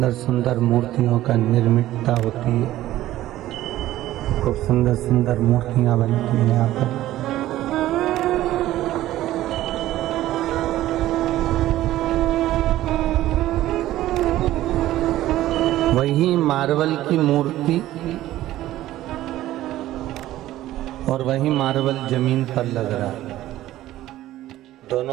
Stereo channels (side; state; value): left; quieter; 14.7 dB